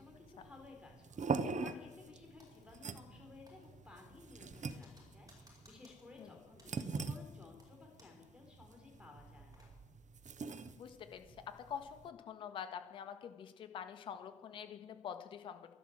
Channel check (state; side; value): normal; both; correlation 0.50